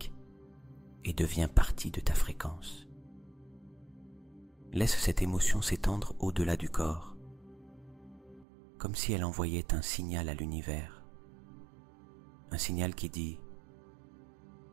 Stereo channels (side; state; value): left; drops out; at 8.5 s